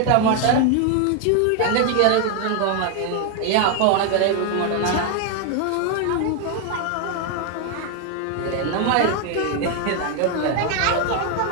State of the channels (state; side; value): different; both; correlation 0.01